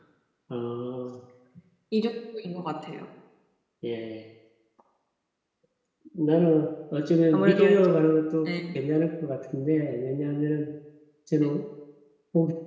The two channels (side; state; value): both; identical; correlation 1.00